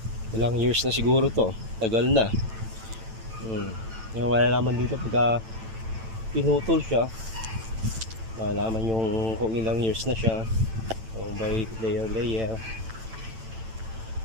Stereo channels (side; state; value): left; late; 9.0 ms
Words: Ilang years na siguro to. Tagal na. Yung malalaman dito pagka pinutol siya, malalaman yung kung ilang years na siya. So by layer.